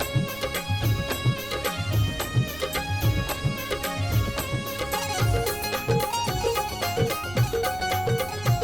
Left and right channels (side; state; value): right; noise; rumble, 17 dB below the sound